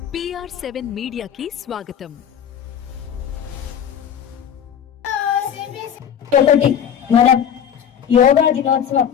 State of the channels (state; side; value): quieter; right; 8.6 dB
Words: PR7 మీడియాకి స్వాగతం. ఒకటి మనం యోగా దినోత్సవం